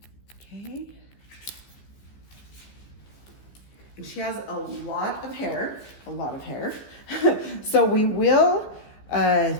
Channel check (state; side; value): late; right; 15 ms